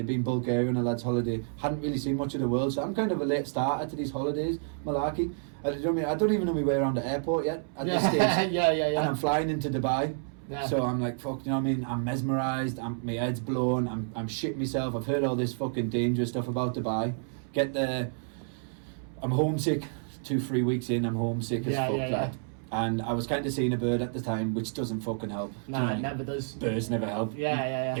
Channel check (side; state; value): left; silent; 58 dB below the other